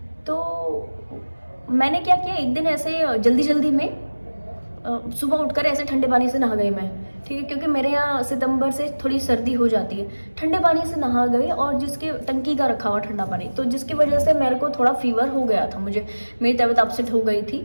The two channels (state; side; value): inverted; both; correlation -1.00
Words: तो मैंने क्या किया, एक दिन ऐसे जल्दी में सुबह उठकर ऐसे ठंडे पानी से नहा गई मैं, ठीक है, क्योंकि मेरे यहाँ सितंबर से थोड़ी सर्दी हो जाती है। ठंडे पानी से नहा गई और जिसके टंकी का रखा हुआ ठंडा पानी, तो जिसकी वजह से मेरे को थोड़ा फीवर हो गया था, मेरी तबीयत अपसेट हो गई